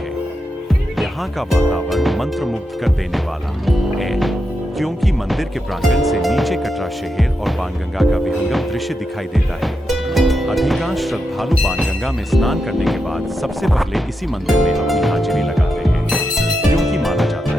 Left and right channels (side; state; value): both; normal; correlation 0.86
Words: यहाँ का वातावरण मंत्रमुग्ध कर देने वाला है, क्योंकि मंदिर के प्रांगण से नीचे कटरा शहर और बाणगंगा का विहंगम दृश्य दिखाई देता है। अधिकांश श्रद्धालु बाणगंगा में स्नान करने के बाद सबसे पहले इसी मंदिर में अपनी हाजिरी लगाते हैं, क्योंकि माना जाता